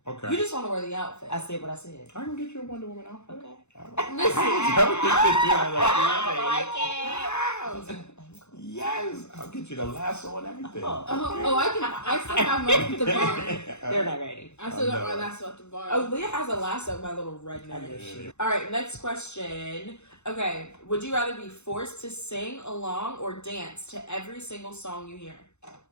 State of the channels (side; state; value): right; late; 0.82 ms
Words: Okay. You just want to wear the outfit. I said what I said. I can get you a Wonder Woman outfit. Okay. Yes, I'll get you the lasso and everything. I still have mine at the bar. They're not ready. I still got my lasso at the bar. Oh, Leah has a lasso, my little I redneck. know she. All right, next question. Okay, would you rather be forced to sing along or dance to every single song you hear?